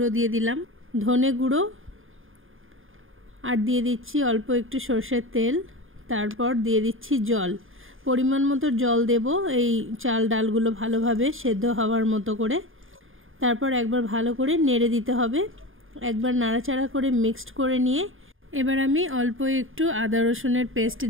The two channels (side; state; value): left; late; 0.59 ms